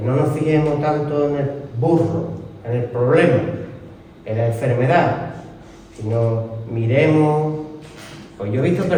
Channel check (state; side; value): identical; both; correlation 1.00